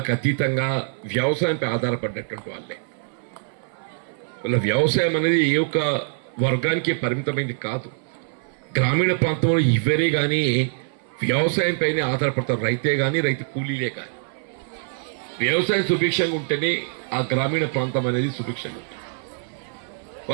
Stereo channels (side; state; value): left; silent; 59 dB below the other